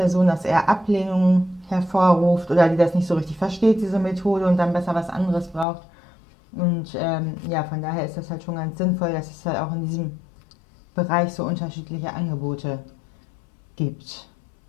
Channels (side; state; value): right; drops out; at 5.7 s